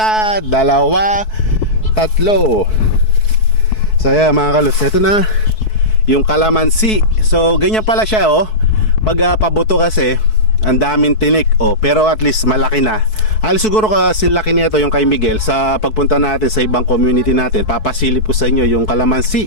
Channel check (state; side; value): late; right; 4.6 ms